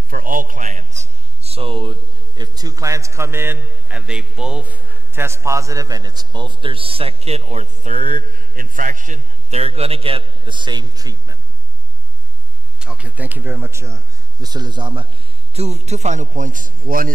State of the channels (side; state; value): both; normal; correlation 0.06